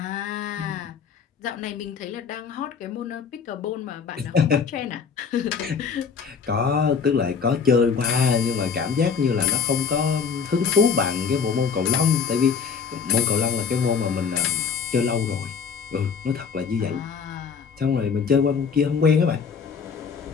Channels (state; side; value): quieter; right; 6.2 dB